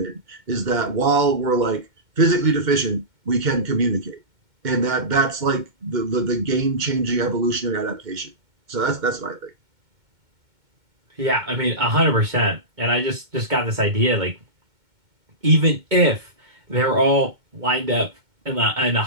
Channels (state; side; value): late; left; 2.2 ms